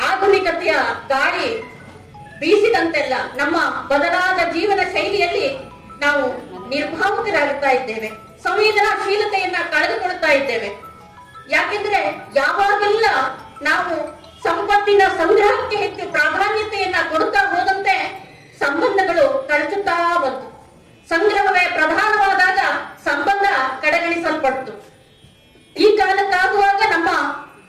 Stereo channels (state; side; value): identical; both; correlation 1.00